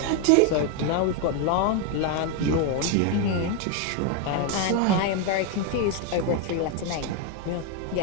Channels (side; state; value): both; different; correlation 0.01